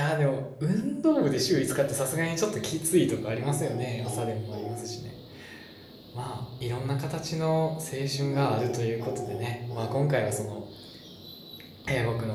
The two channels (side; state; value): both; identical; correlation 1.00